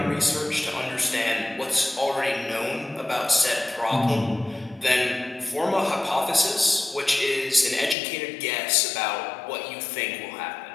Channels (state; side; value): drops out; right; at 8.0 s